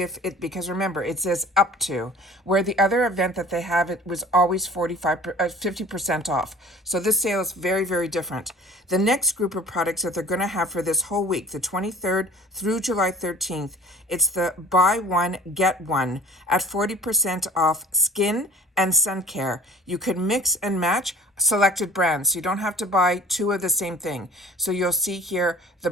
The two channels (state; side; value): normal; both; correlation 0.47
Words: if it, because remember, it says up to, where the other event that they have, it was always 50% off. So this sale is very, very different. The next group of products that they're going to have for this whole week, the 23rd through July 13th, it's the buy one, get one at 40% off skin and sun care. You can mix and match selected brands. You don't have to buy two of the same thing. So you'll see here, the